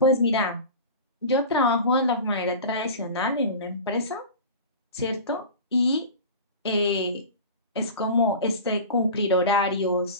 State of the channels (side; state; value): both; inverted; correlation -0.33